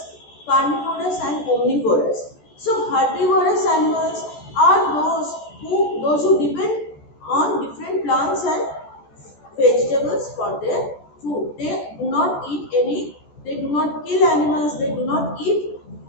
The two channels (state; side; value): late; right; 14 ms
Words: carnivorous and omnivorous. So herbivorous animals are those who depend on different plants and vegetables for their food. They do not eat they do not kill animals, they do not eat